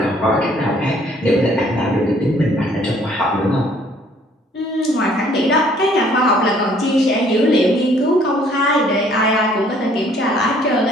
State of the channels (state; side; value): normal; both; correlation 0.60